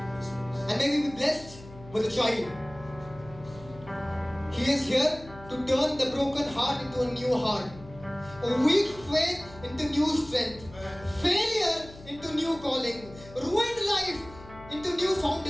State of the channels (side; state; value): left; noise; hum, 18 dB below the sound